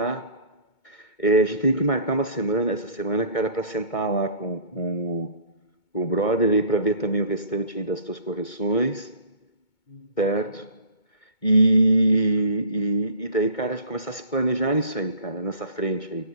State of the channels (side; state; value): right; late; 2.2 ms